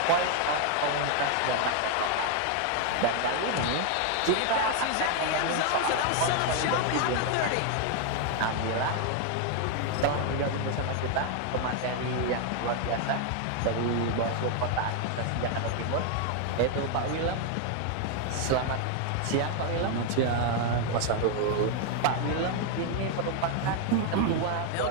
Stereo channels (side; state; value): both; different; correlation 0.00